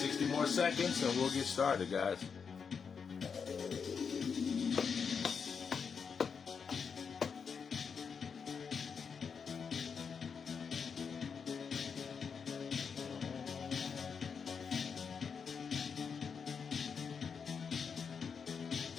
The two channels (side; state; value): right; quieter; 6.1 dB